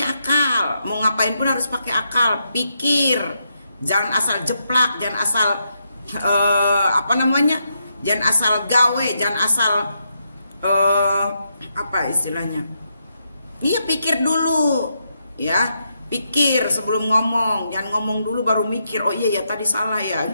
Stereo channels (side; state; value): both; inverted; correlation -0.81